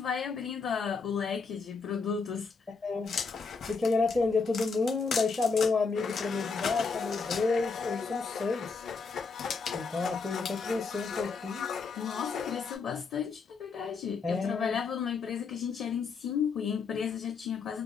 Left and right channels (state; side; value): quieter; right; 4.8 dB